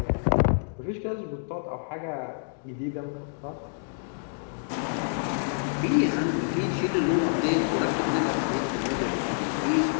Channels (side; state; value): right; silent; digital silence